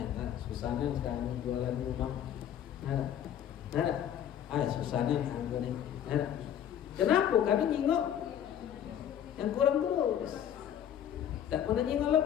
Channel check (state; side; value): quieter; right; 9.8 dB